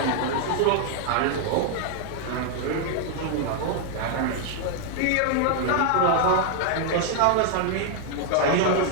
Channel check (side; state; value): both; different; correlation 0.00